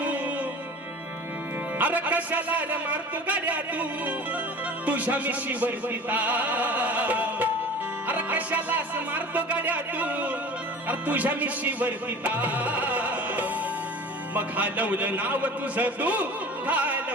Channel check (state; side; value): normal; both; correlation 0.39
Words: अरे कशाला मारतो गाड्या तू तुझ्या मिशीवर पिता, अरे कशाला मारतो गाड्या तू अरे तुझ्या मिशीवर पिता. मग घालवलं नाव तुझं तू,